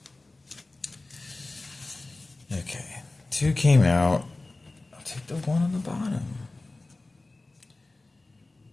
Okay, 2 came out. I'll take the 1 on the bottom.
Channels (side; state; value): right; quieter; 3.1 dB